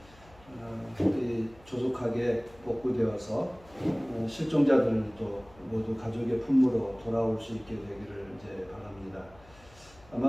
조속하게 복구되어서 실종자들도 모두 가족의 품으로 돌아올 수 있게 되기를 이제 바랍니다.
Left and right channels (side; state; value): left; noise; hum, 25 dB below the sound